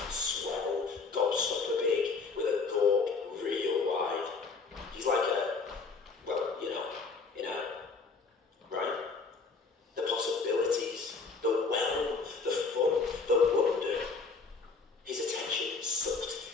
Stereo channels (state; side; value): quieter; right; 4.4 dB